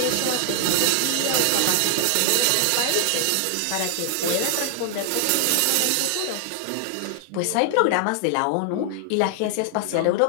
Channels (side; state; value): both; different; correlation 0.00